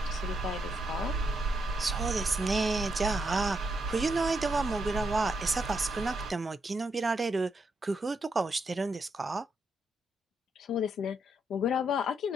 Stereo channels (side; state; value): both; normal; correlation 0.79